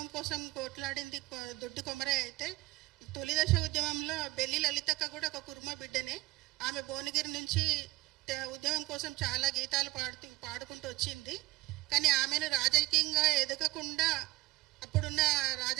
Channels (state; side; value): quieter; left; 19.2 dB